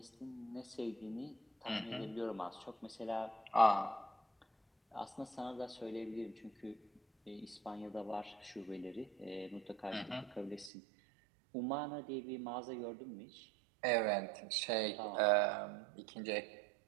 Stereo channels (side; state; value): left; drops out; at 10.7 s